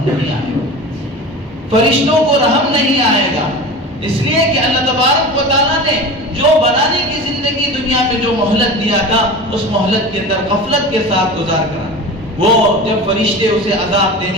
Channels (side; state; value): both; normal; correlation 0.33